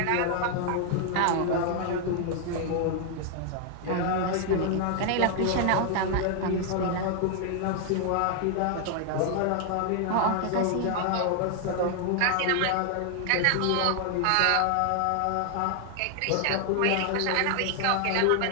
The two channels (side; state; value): both; different; correlation 0.00